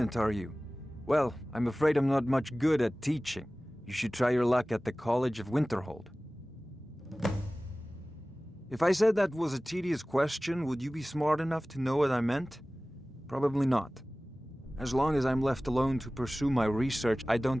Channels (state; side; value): normal; both; correlation 0.97